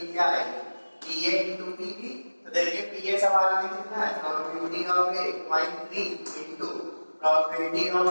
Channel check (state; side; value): inverted; both; correlation -1.00